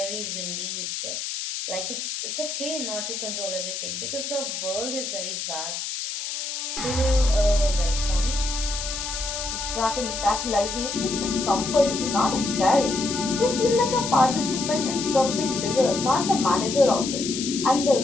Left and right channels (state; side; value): noise; left; hiss, 5 dB below the sound